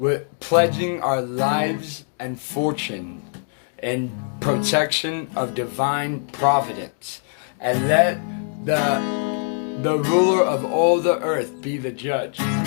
pledging our lives and fortune in protection of divine providence. And let the ruler of all the earth be the judge.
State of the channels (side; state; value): right; silent; 62 dB below the other